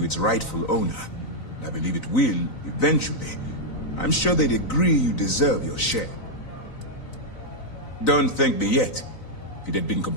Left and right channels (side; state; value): right; late; 3.9 ms